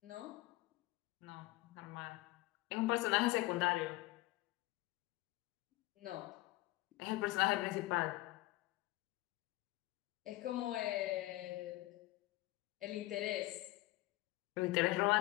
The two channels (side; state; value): right; quieter; 18.8 dB